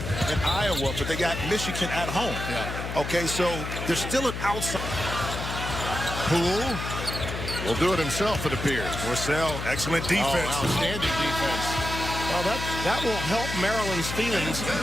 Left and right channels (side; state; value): left; noise; hum, 6 dB below the sound